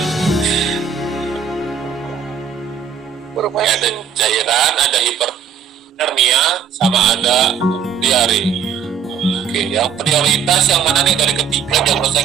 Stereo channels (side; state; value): left; quieter; 7.3 dB